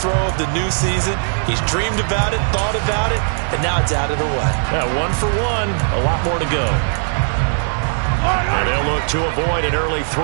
of the new season. He's dreamed about it, thought about it, and now it's out of the way. Yeah, 1 for 1. A lot more to go. And they'll look to avoid an early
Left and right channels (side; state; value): left; silent; digital silence